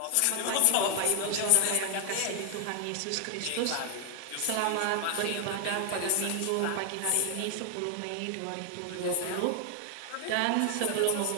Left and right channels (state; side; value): different; both; correlation 0.00